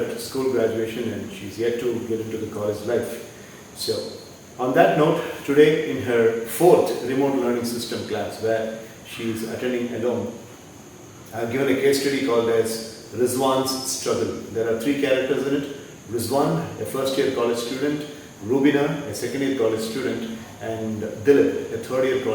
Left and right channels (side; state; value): both; identical; correlation 1.00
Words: school graduation and she's yet to get into the college life. So, on that note, today in her fourth remote learning system class where she is attending alone, I have given a case study called as Rizwan's Struggle. There are three characters in it. Rizwan, a first year college student, Rubina, a second year college student, and Dilip, a third year